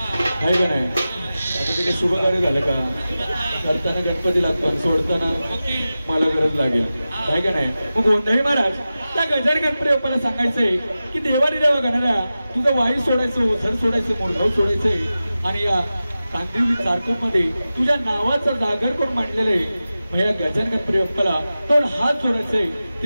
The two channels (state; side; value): inverted; both; correlation -0.95